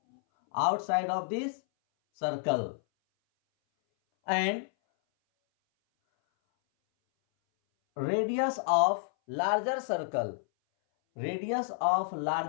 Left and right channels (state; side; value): silent; right; 58 dB below the other